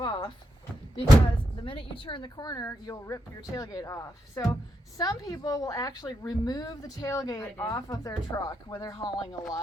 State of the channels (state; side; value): normal; both; correlation 0.83